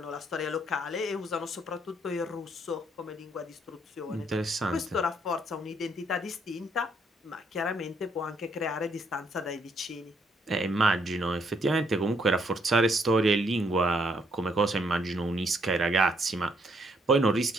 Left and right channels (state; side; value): normal; both; correlation 0.71